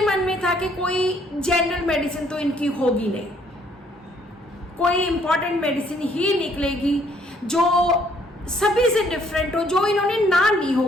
मन में था कि कोई जनरल मेडिसिन तो इनकी होगी नहीं, कोई इंपॉर्टेंट मेडिसिन ही निकलेगी जो सभी से डिफरेंट हो, जो इन्होंने ना ली हो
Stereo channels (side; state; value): both; normal; correlation 0.65